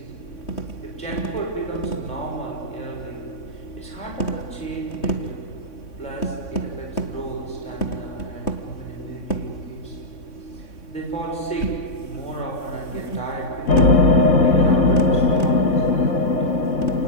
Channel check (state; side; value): late; right; 3.6 ms